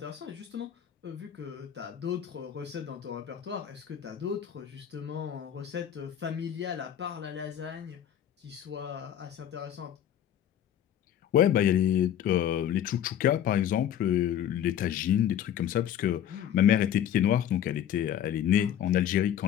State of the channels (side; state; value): right; quieter; 10.2 dB